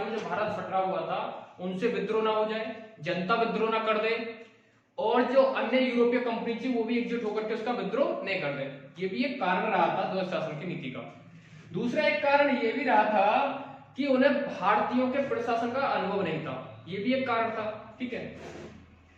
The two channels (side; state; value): both; identical; correlation 1.00